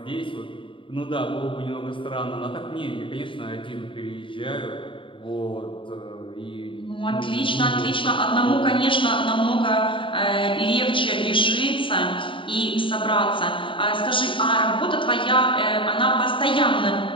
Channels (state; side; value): late; right; 0.25 ms